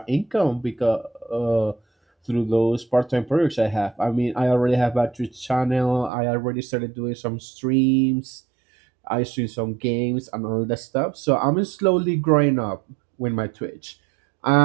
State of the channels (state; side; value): drops out; left; at 6.1 s